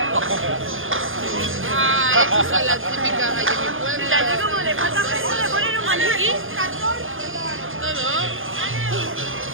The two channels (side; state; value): left; late; 0.59 ms